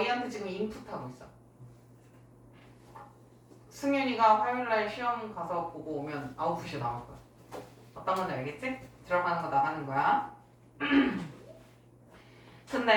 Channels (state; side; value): identical; both; correlation 1.00